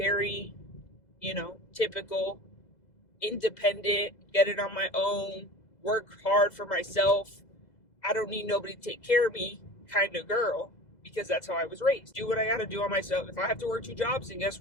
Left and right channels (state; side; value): late; right; 2.0 ms